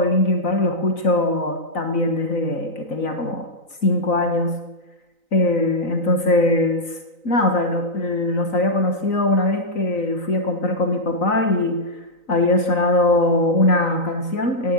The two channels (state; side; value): late; right; 3.9 ms